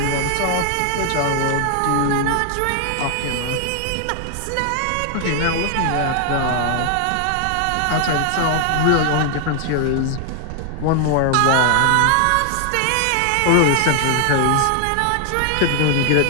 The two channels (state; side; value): different; both; correlation 0.00